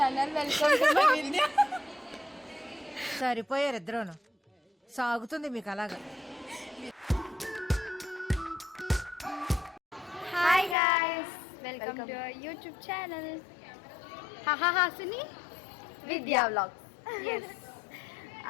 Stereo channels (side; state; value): right; drops out; at 10.8 s